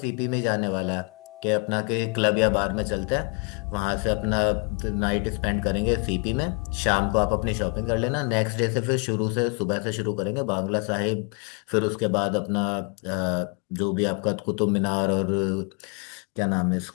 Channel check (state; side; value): quieter; right; 32.7 dB